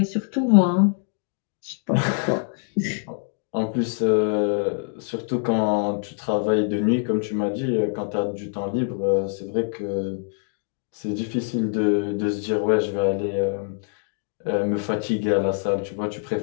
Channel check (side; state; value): right; silent; 58 dB below the other